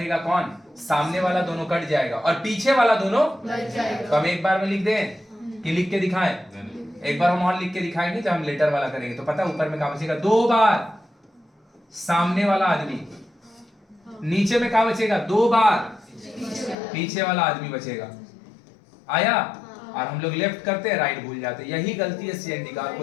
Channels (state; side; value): drops out; right; at 16.8 s